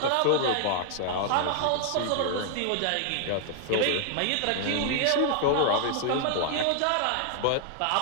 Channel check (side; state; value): both; different; correlation 0.00